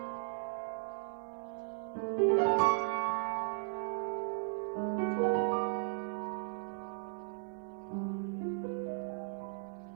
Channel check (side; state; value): left; silent; 53 dB below the other